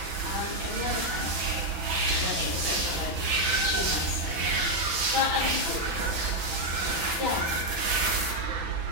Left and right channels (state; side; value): late; left; 6.0 ms